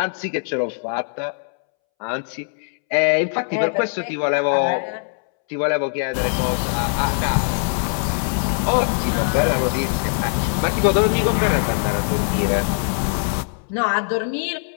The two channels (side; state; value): right; silent; 65 dB below the other